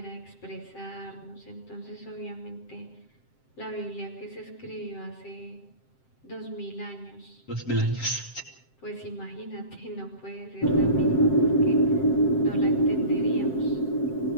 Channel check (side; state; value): right; late; 7.7 ms